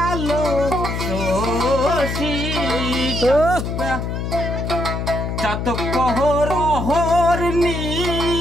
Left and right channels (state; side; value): noise; left; hum, 3 dB below the sound